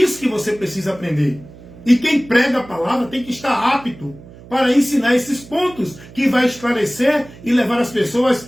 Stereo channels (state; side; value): noise; right; hum, 20 dB below the sound